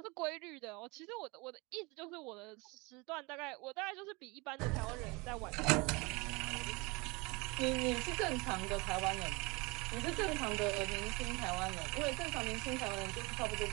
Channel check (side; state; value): left; quieter; 26.1 dB